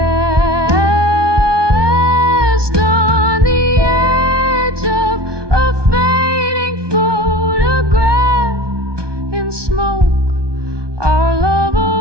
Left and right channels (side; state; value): left; late; 1.2 ms